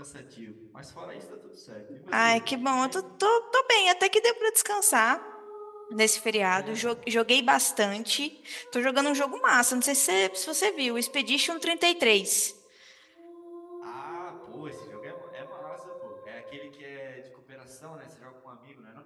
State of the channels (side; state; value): both; identical; correlation 1.00